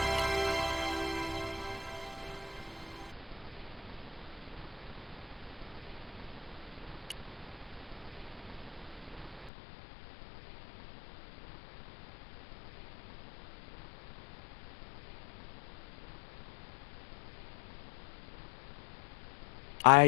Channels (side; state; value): right; drops out; at 9.5 s